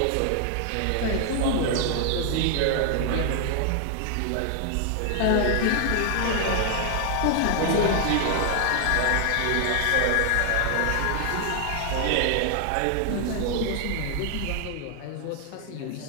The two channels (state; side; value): different; both; correlation 0.00